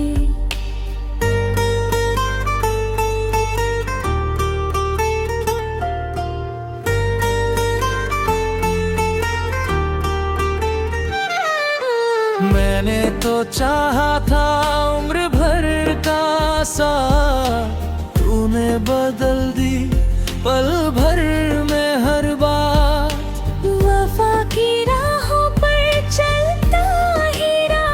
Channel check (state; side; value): identical; both; correlation 1.00